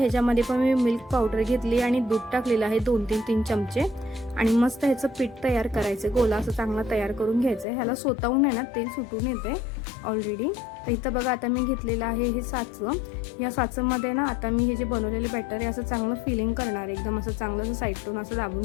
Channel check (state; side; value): drops out; right; at 7.7 s